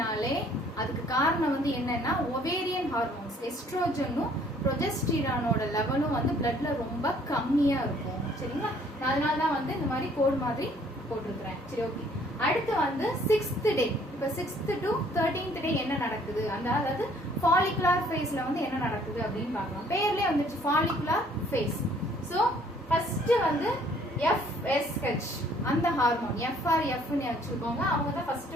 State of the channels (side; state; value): both; normal; correlation 0.60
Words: அதுக்கு காரணம் வந்து என்னன்னா ஓவேரியன் ஹார்மோன்ஸ், எஸ்ட்ரோஜனும் ப்ரொஜெஸ்டிரானோட லெவலும் வந்து பிளட்ல ரொம்ப கம்மியா இருக்கும். சரிங்களா, அதனால தான் வந்து இந்த மாதிரி கோட் மாதிரி போட்டிருக்கிறேன். சரி, ஓகே. அடுத்து வந்து 6th டே, இப்ப 6th to 13th டே என்ன நடக்குது, அதாவது ஃபாலிகுலர் ஃபேஸ்ல வந்து என்ன நடக்குது அப்படின்னு பார்க்கலாம். பேர்லயே வந்துச்சு ஃபாலிகுலர் ஃபேஸ். சோ ஃபர்ஸ்ட் வந்து FSH அந்த ஹார்மோன், FRFன்னு வச்சுக்கோங்க, அவங்க தான் ஃபர்ஸ்ட்